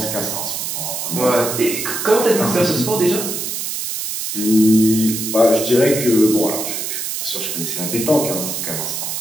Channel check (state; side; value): noise; right; hiss, 4 dB below the sound